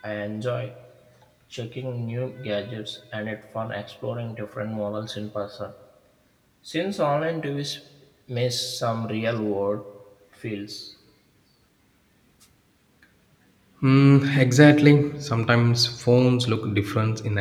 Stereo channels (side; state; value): both; identical; correlation 1.00